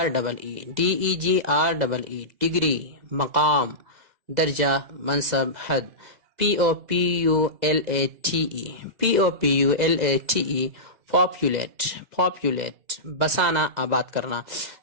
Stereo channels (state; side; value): late; left; 2.0 ms